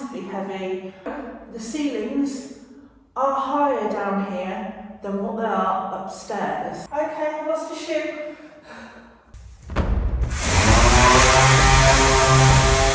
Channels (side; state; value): both; identical; correlation 1.00